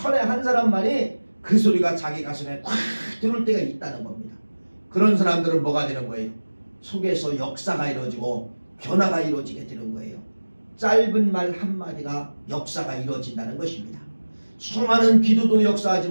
한 사람만이 그 소리가 자기 가슴에 꽉 들어올 때가 있다는 겁니다. 그런 사람들은 뭐가 되는 거예요? 속에서 역사가 이루어지고 변화가 이루어지게 되는 거예요. 짧은 말 한마디가 역사가 이루어진다는 것입니다. 수많은 기도도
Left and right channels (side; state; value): both; inverted; correlation -1.00